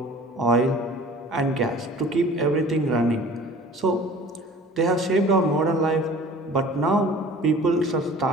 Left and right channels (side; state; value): both; normal; correlation 0.46